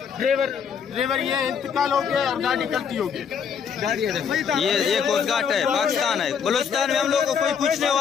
ये इंतकाल हो गया और गाड़ी कल्टी हो गई। ये कोस्ट गार्ड है, पाकिस्तान है। बलूचिस्तान में हम लोग को कोई पूछने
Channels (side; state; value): right; quieter; 7.0 dB